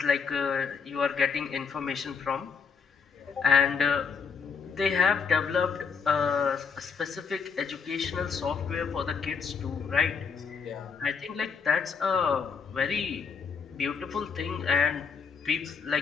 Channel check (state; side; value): quieter; right; 5.9 dB